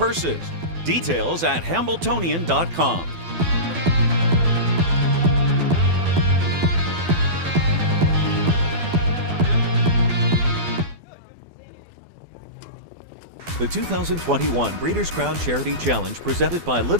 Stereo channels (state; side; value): late; left; 12 ms